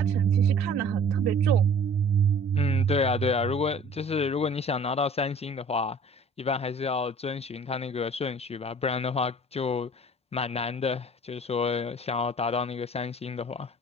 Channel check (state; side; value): normal; both; correlation 0.48